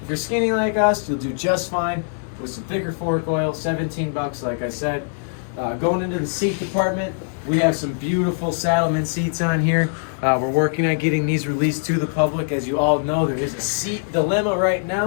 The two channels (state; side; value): silent; right; digital silence